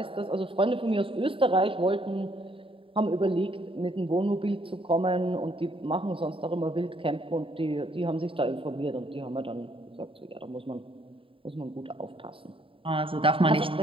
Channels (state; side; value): late; left; 0.26 ms